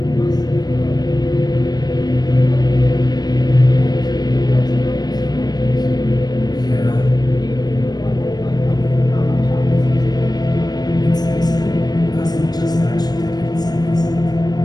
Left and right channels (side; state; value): right; late; 0.19 ms